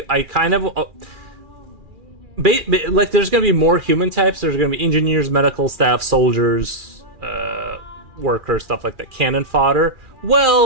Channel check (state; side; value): late; left; 2.4 ms